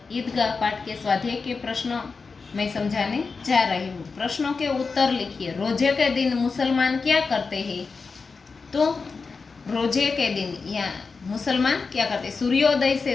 ईदगाह पाठ के स्वाध्याय के प्रश्न मैं समझाने जा रही हूँ। प्रश्नों के उत्तर लिखिए। रोजे के दिन मुसलमान क्या करते हैं? तो रोजे के दिन या मुसलमान क्या करते? सूर्योदय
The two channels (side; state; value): right; quieter; 4.6 dB